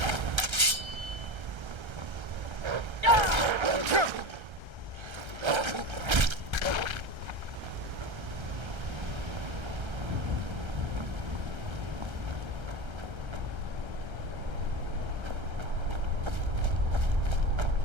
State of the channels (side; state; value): left; late; 1.3 ms